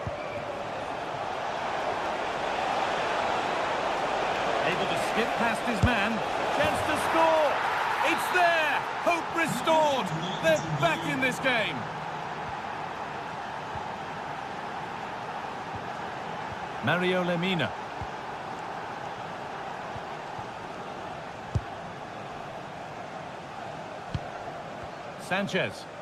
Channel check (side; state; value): both; identical; correlation 1.00